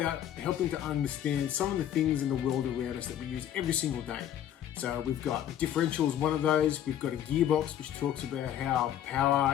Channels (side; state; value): right; quieter; 10.8 dB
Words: helping to understand some of the things in the world around us that we use every single day. So we've got the differential is one of those. We've got a gearbox, which talks about how